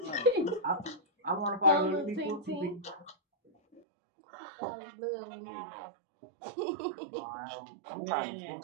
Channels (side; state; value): left; drops out; at 3.8 s